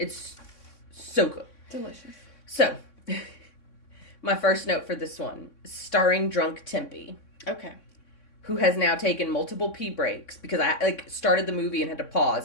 so good. Delicious. So, my first note for this one, starring Drunk Tempe. Okay. Who has now taken multiple pee breaks because I, started the movie and had to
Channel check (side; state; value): right; late; 3.6 ms